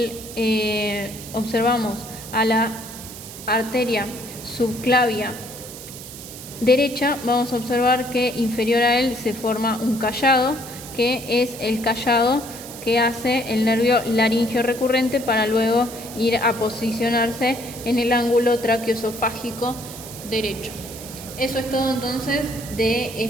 observamos a la arteria subclavia derecha, vamos a observar que inferior a él se forma un callado, que es el callado que hace el nervio laringio recurrente para luego ir a posicionarse en el ángulo traqueoesofágico derecho. Eso es todo entonces de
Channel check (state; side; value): noise; right; hiss, 13 dB below the sound